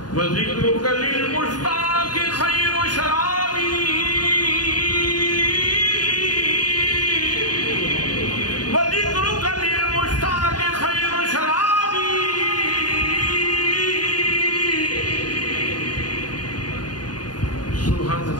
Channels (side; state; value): right; late; 0.69 ms